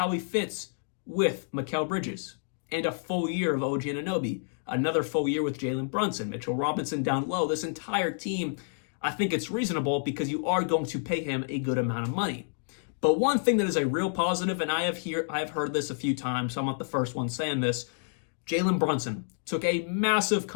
he fits with Mikal Bridges and a full year of OG Anunoby, another full year with Jalen Brunson, Mitchell Robinson down low. This entire team, I think it's reasonable because you are going to pay him a good amount of money. But one thing that is a real positive, and I've heard this a few times, so I'm not the first one saying this, Jalen Brunson took a massive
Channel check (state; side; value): silent; right; digital silence